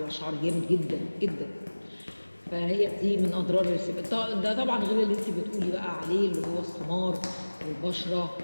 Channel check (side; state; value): both; inverted; correlation -1.00